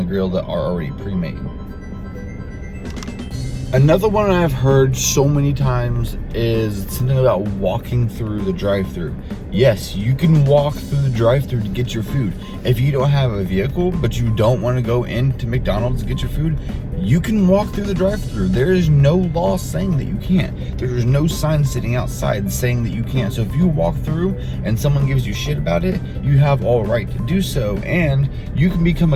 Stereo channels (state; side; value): identical; both; correlation 1.00